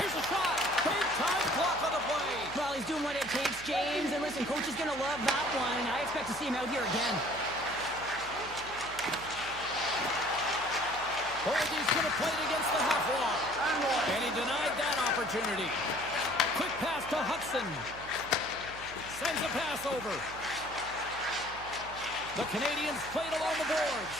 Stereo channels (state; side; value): noise; right; hum, 17 dB below the sound